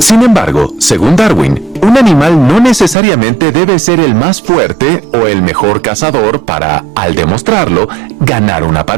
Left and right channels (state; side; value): drops out; left; at 3.0 s